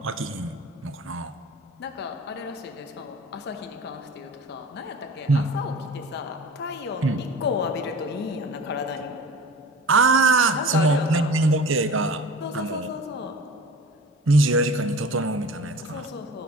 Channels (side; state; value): both; normal; correlation 0.39